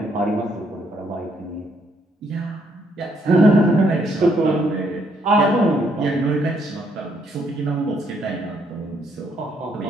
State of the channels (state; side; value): normal; both; correlation 0.71